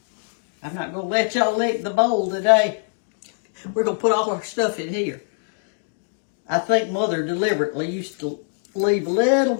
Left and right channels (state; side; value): silent; right; digital silence